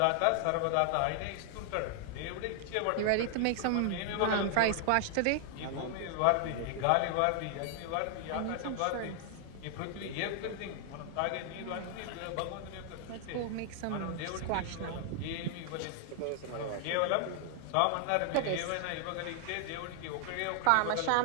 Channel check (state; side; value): different; both; correlation 0.00